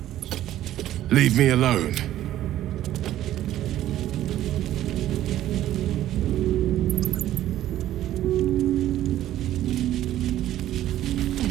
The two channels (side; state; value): left; quieter; 13.1 dB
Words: Leave me alone.